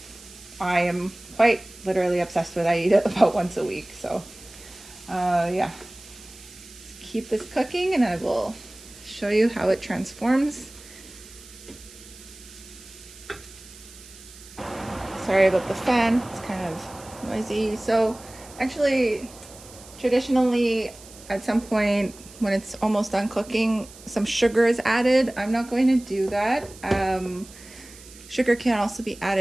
I am quite literally obsessed with. I eat it about once a week. So yeah, let's keep this cooking and I will show you how it transforms. Sorry about the fan, it's kind of noisy. So actually, traditionally, at some point when it's almost done cooking, some sugar is added. I'm not going to do that. Sugar can also be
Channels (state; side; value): noise; right; hiss, 20 dB below the sound